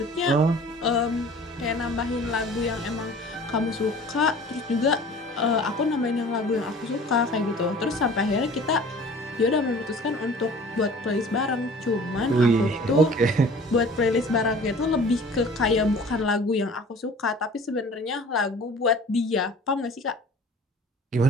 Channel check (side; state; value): both; normal; correlation 0.46